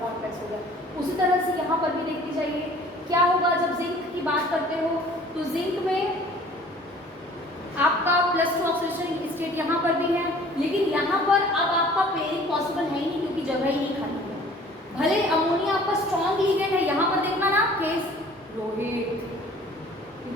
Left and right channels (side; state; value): both; normal; correlation 0.51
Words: कॉम्प्लेक्स हो गया। उसी तरह से यहाँ पर भी देखनी चाहिए क्या होगा, जब जिंक की बात करते हो तो जिंक में आपका +2 ऑक्सीडेशन स्टेट यहाँ पर भी है, लेकिन यहाँ पर अब आपका पेयरिंग पॉसिबल है ही नहीं, क्योंकि जगह ही नहीं खाली है। भले अमोनिया आपका स्ट्रॉन्ग लिगेंड है, यहाँ पर देखना ना केस रोहित,